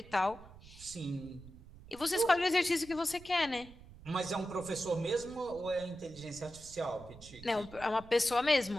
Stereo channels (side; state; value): right; noise; rumble, 19 dB below the sound